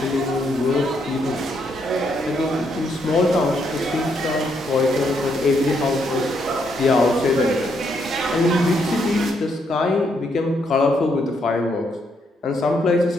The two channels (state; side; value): normal; both; correlation 0.75